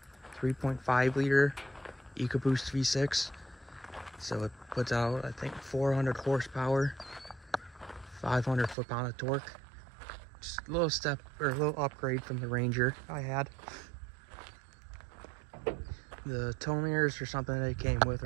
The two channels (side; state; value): left; drops out; at 8.8 s